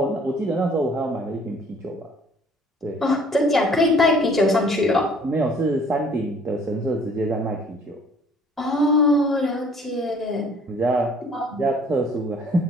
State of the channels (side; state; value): both; normal; correlation 0.56